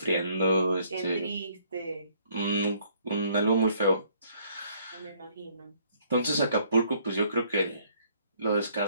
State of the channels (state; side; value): inverted; both; correlation -0.65